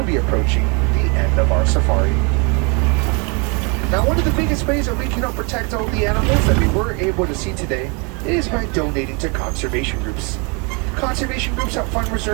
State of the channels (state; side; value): quieter; left; 32.5 dB